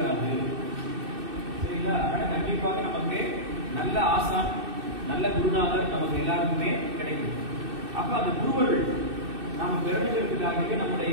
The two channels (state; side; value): late; left; 2.6 ms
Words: சரிங்களா? ஆனா கண்டிப்பாக நமக்கு நல்ல ஆசான் நல்ல குருநாதர் நமக்கு எல்லாருக்குமே கிடைக்கும். அப்ப அந்த குருவர்கள் நாம பெருமைகளுக்காகவே